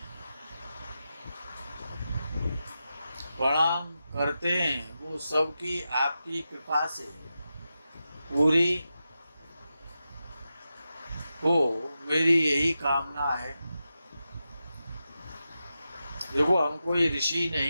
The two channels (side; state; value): both; inverted; correlation -0.90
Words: प्रणाम करते हैं, वो सबकी आपकी कृपा से पूरी हो, मेरी यही कामना है। देखो, हम कोई ऋषि